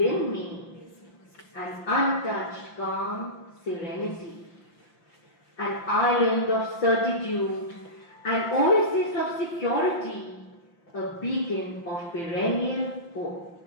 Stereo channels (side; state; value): right; late; 5.9 ms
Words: me, an untouched calm serenity, an island of certitude, an oasis of security, a beacon of perennial